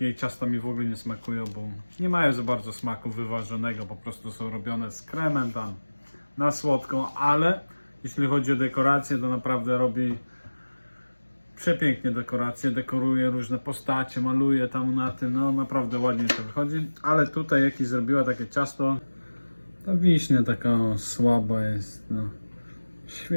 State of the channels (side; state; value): both; inverted; correlation -1.00